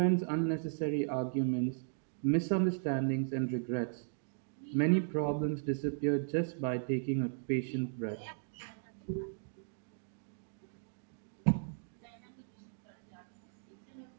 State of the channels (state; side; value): silent; left; digital silence